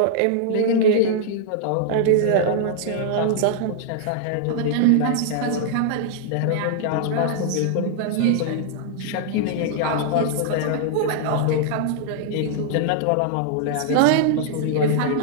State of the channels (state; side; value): different; both; correlation -0.01